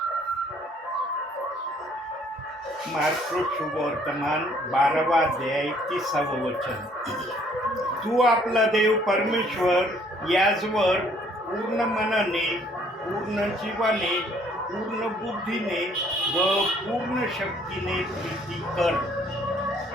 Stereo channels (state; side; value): normal; both; correlation 0.62